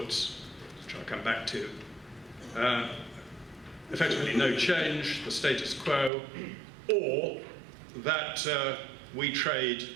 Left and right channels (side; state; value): left; drops out; at 6.1 s